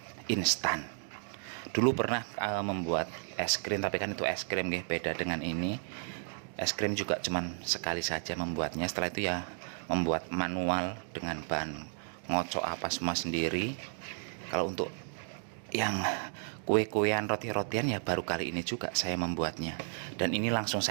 instan. Dulu pernah membuat es krim, tapi kan itu es krim nggih, beda dengan ini. Es krim juga cuman sekali saja membuatnya, setelah itu ya membuat manual dengan bahan ngocok apa semua sendiri. Kalau untuk yang kue-kuean, roti-rotian ya baru kali ini juga saya membuatnya. Dan ini langsung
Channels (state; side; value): silent; left; 56 dB below the other